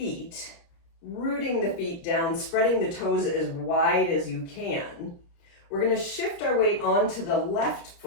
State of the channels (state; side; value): late; right; 29 ms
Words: rooting the feet down, spreading the toes as wide as you can. We're going to shift our weight onto the left